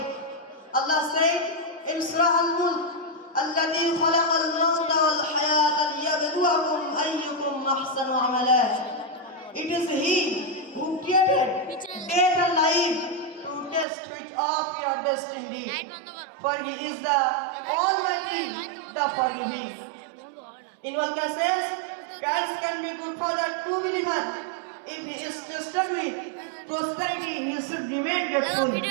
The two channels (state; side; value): drops out; left; at 13.9 s